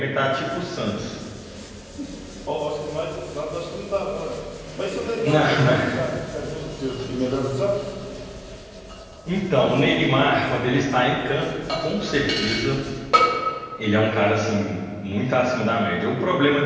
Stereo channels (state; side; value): identical; both; correlation 1.00